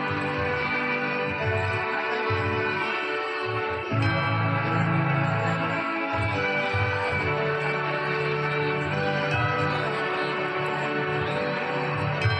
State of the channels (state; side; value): identical; both; correlation 1.00